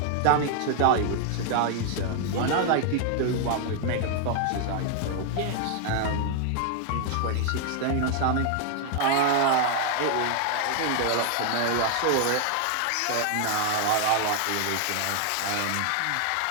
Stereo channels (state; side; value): different; both; correlation 0.00